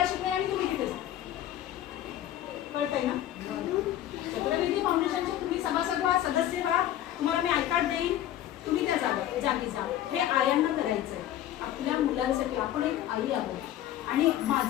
शिकवेन आणि तुम्ही तिथे कळतंय ना. चक्रविधी फाउंडेशनचे तुम्ही सभासद व्हा, सदस्य व्हा. तुम्हाला मी आय कार्ड देईन, तुम्ही त्या जागी जा. हे आयांना करायचंय आपल्या मुलांसाठी. आपण एक आई आहोत. आणि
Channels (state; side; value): quieter; right; 12.3 dB